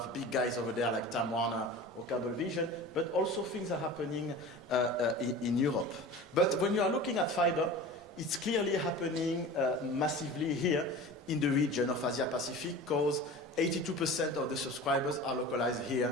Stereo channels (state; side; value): normal; both; correlation 0.36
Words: big guys over there like Time Warner or Cablevision, but also things are happening in Europe. But when you are looking at fiber, it's clearly happening massively here in the region of Asia Pacific, because 82% of the subscribers are localized